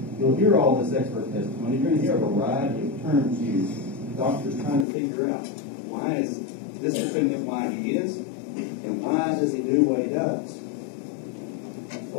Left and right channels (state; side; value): drops out; right; at 4.9 s